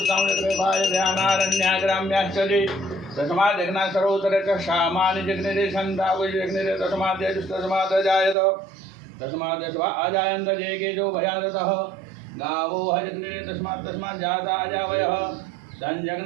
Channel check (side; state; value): left; drops out; at 8.3 s